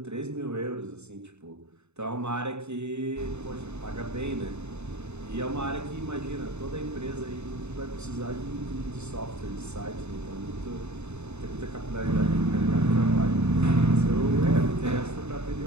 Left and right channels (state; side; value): late; left; 0.82 ms